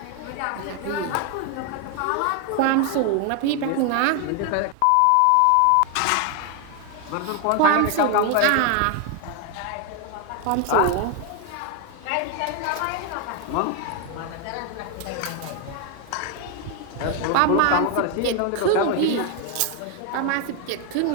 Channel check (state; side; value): different; both; correlation 0.01